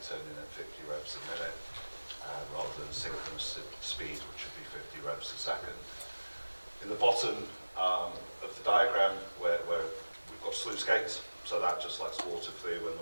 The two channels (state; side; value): inverted; both; correlation -1.00